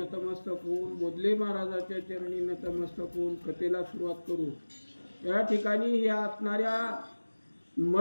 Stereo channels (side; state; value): both; inverted; correlation -1.00